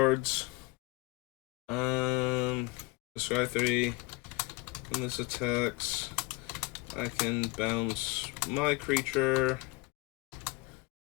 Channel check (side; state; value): right; quieter; 23.9 dB